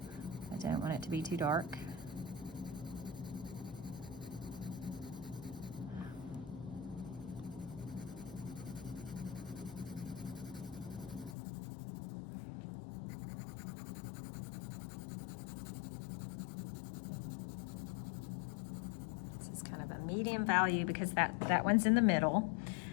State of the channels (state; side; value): drops out; right; at 11.4 s